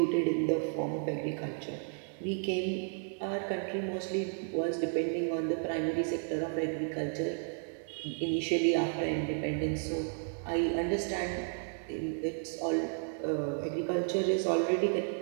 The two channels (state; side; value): silent; left; 56 dB below the other